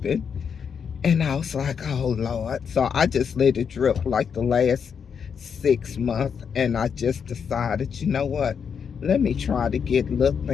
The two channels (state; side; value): quieter; right; 6.9 dB